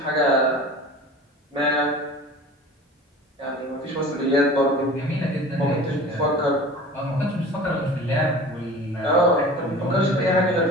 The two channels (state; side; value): normal; both; correlation 0.40